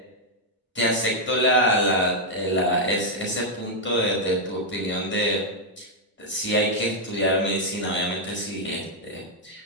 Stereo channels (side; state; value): both; normal; correlation -0.02